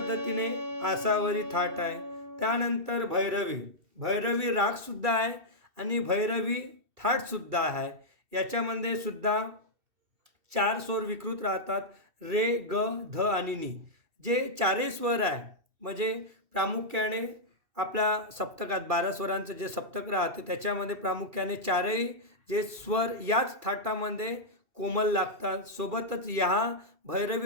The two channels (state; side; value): late; left; 2.7 ms